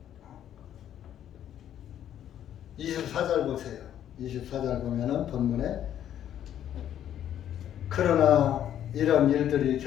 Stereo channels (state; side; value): quieter; right; 10.6 dB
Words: 24절 보세요. 24절 보면은 본문에 그러나 이런 일들이